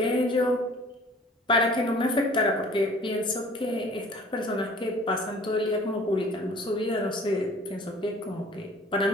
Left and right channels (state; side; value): normal; both; correlation 0.50